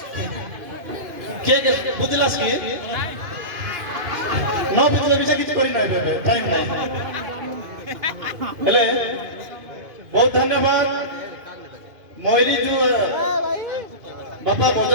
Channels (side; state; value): left; late; 2.5 ms